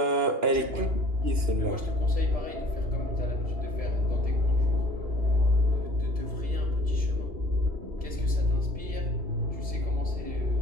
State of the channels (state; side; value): late; left; 2.9 ms